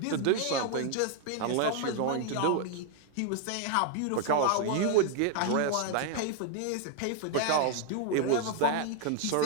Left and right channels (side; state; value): both; different; correlation 0.00